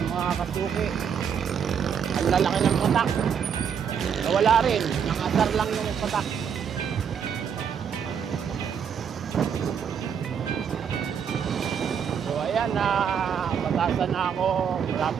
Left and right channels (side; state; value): left; quieter; 7.5 dB